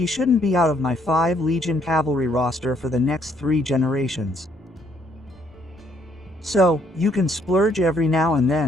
shouldn't be out of my 5 Legion cavalry roster for the next 3 generations. So, you can splurge every now and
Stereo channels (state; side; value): normal; both; correlation 0.68